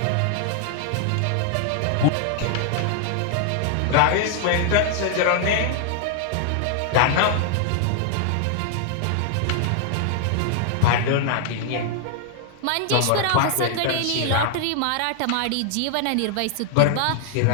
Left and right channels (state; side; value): different; both; correlation 0.00